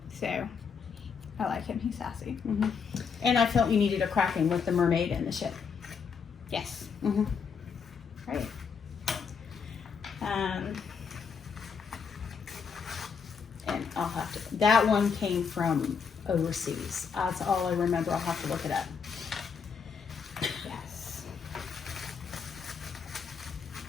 I like him. He's sassy. And I felt you needed a kraken with the mermaid and the ship. Yes. Right. And I'll have to. That one came from overseas. That's all I remember. I'll have to look it up. Yes.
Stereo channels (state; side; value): quieter; right; 6.0 dB